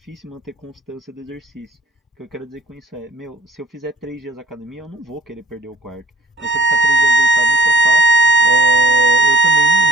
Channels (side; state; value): both; normal; correlation 0.50